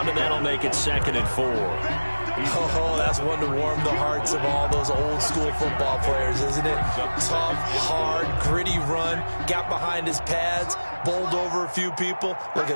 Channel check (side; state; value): both; inverted; correlation -1.00